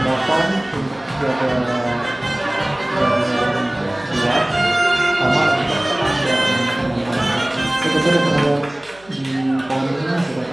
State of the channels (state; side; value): noise; right; hum, 27 dB below the sound